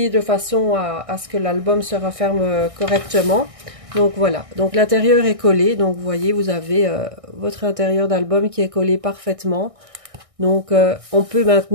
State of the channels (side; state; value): left; late; 1.6 ms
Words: de façon à ce que l'album se referme correctement. Donc voilà, donc l'intérieur est collé. Donc vous voyez, vous avez votre intérieur d'album qui est collé parfaitement. Donc on peut